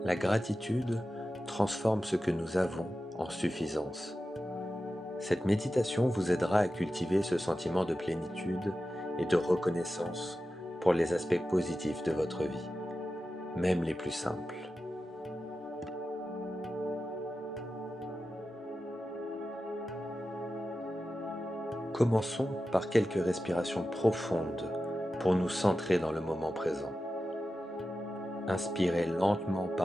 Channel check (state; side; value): normal; both; correlation 0.92